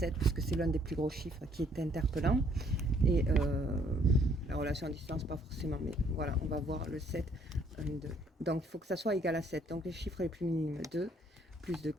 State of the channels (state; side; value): normal; both; correlation 0.64